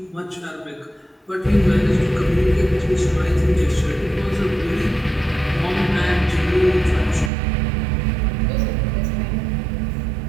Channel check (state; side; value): drops out; left; at 7.3 s